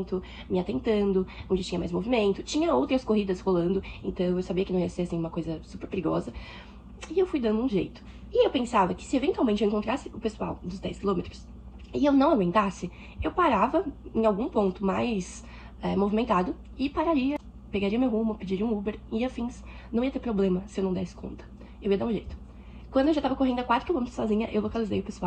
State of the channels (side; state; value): both; identical; correlation 1.00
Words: me atentando, onde tinha mais movimento. Tinha outras corridas rolando, então eu sabia que não ia ser assim uma coisa super perigosa. E eu fui dando um jeito. E eu pensava que se eventualmente eu encontrasse o pessoal dos 10 quilômetros e eu não aguentasse, eu parava em algum ponto mais movimentado e pararia, pegaria meu rumo, pediria um Uber e afins. Não ia ter problema se eu não desse conta. Eu ia dar um jeito. Quando eu já tava correndo a 4 quilômetros sozinha, eu localizei o